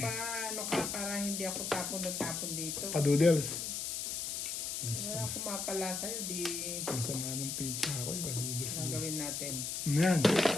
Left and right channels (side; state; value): left; noise; hiss, 3 dB below the sound